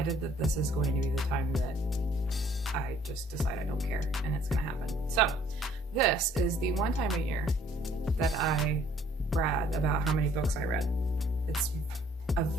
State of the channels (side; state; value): both; normal; correlation 0.60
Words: that this is going to be the time that I just decide I don't care, and it's gonna happen. So this is the one time a year that I brag about how many books I read. It's a